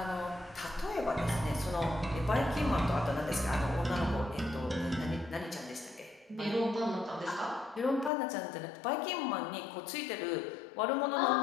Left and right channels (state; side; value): drops out; right; at 8.1 s